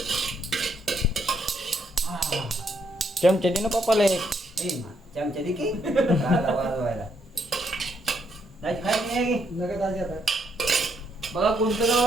चमचे दे ना पप्पाला एक ए, चमचा दे की. राहिला वाजवायला. जायची खायची नाही की? नका दाजी आता. बघा कोणतं गाव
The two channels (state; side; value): normal; both; correlation 0.75